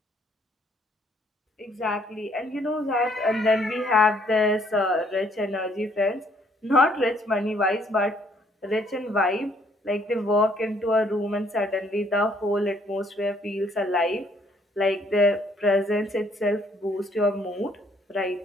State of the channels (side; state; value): both; normal; correlation 0.65